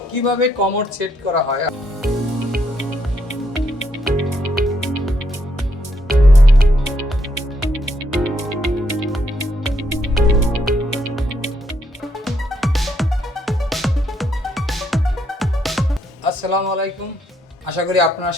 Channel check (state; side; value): normal; both; correlation 0.74